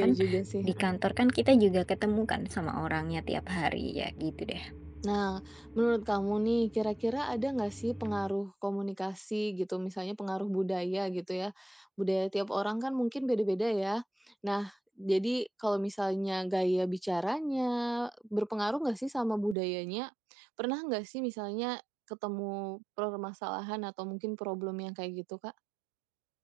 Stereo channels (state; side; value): drops out; left; at 19.6 s